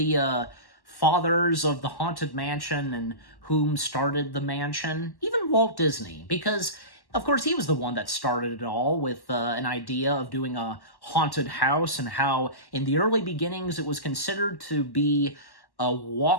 fathers of the Haunted Mansion and whom started the mansion, even Walt Disney, because of course, he was the one that started it all with an idea of doing a haunted house and how in the early beginnings it was considered to be a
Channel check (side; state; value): right; late; 1.1 ms